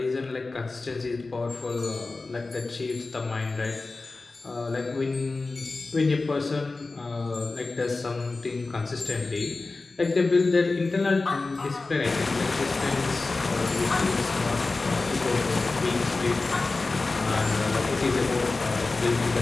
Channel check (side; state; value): right; quieter; 3.6 dB